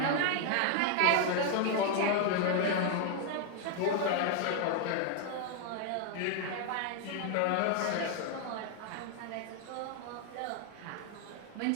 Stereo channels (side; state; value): both; different; correlation 0.00